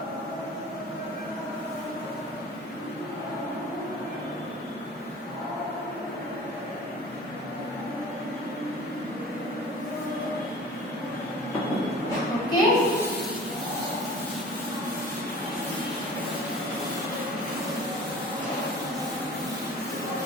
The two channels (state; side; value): normal; both; correlation 0.42